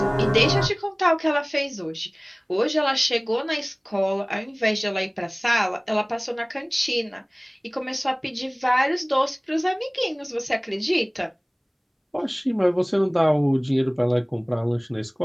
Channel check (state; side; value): identical; both; correlation 1.00